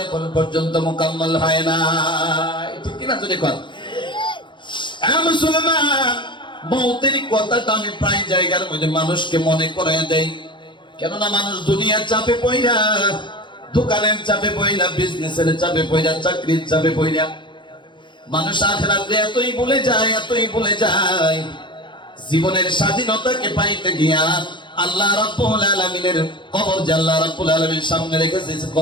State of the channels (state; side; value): late; right; 0.23 ms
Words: এখন পর্যন্ত মোকাম্মল হয় না, ঠিক কিনা? যদি মুসলমান, মৌতের কথাটা আমি প্রায় জায়গার মধ্যে মানুষকে মনে করাই দেই, কেননা মানুষ দুনিয়ার চাপে পইরা, দোকানের চাপে পইরা, বিজনেসের চাপে পইরা, চাকরির চাপে পইরা মানুষ আখিরাতে এতই ভুলে যায়, এতই ভুলে যায়, জীবনের স্বাধীনতাকে পাইতে গিয়া আল্লাহ রাব্বুল আলামিনের কবর যে আল্লাহ রাব্বুল আলামিন সামনে রেখেছে,